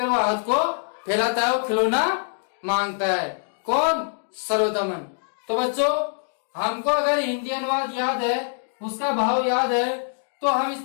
वो हाथ को फैलाता है, वो खिलौना मांगता है। कौन? सर्वदमन। तो बच्चों, हमको अगर हिंदी अनुवाद याद है, उसका भाव याद है, तो हम इस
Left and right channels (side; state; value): right; silent; digital silence